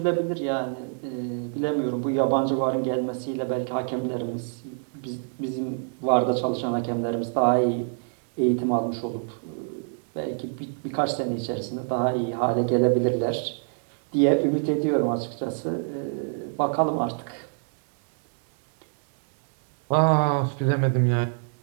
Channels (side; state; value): left; silent; digital silence